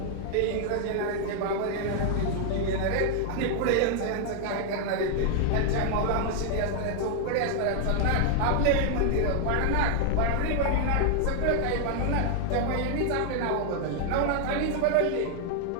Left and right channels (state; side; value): different; both; correlation 0.00